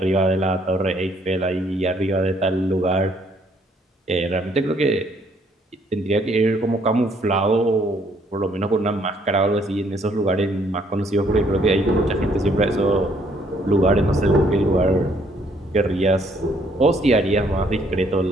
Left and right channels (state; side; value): normal; both; correlation 0.66